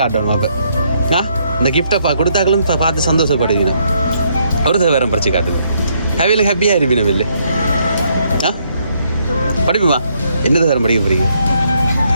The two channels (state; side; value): inverted; both; correlation -0.72